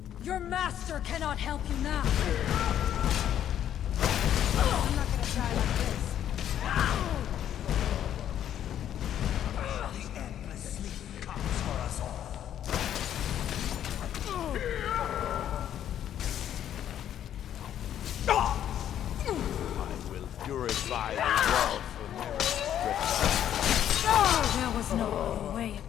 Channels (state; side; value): quieter; right; 10.5 dB